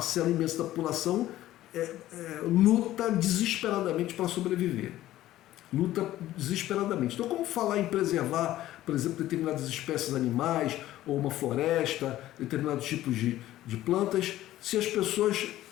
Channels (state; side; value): quieter; right; 14.4 dB